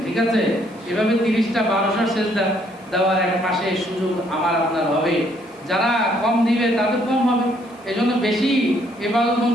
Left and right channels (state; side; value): noise; left; hiss, 30 dB below the sound